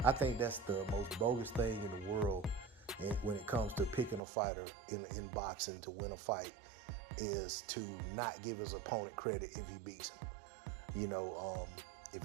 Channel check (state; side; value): drops out; left; at 4.2 s